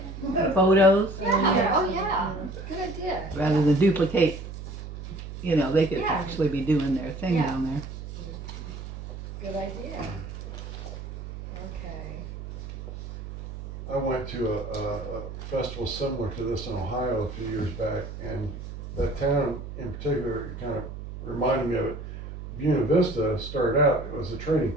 photos Yeah, oh yeah, good idea. rather than duplicate? You know, they could Yeah. actually be doing their thing Yeah. down there. Good idea. Okay. I went to a festival similar to this in Ohio a few years back, and that town in particular kind of reminded me of it. Buena Vista started out, it was a trading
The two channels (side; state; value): right; noise; hum, 10 dB below the sound